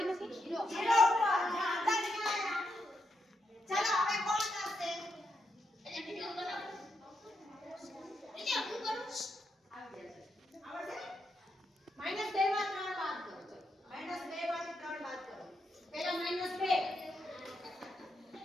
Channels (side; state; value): both; normal; correlation 0.82